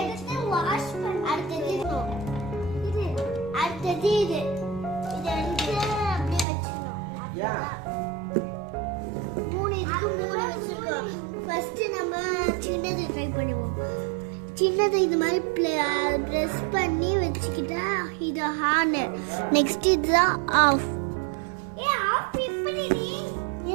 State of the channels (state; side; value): drops out; left; at 6.5 s